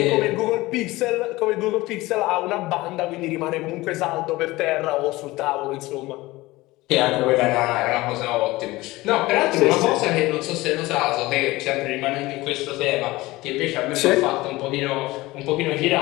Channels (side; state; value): right; quieter; 19.6 dB